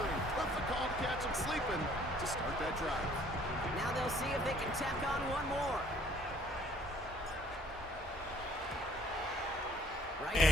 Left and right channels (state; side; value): normal; both; correlation 0.59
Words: Perfect call to catch him sleeping to start that drive. Now they'll see if they can tack on one more. Right